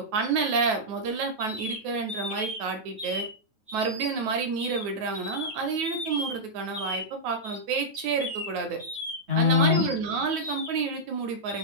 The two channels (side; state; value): left; late; 9.4 ms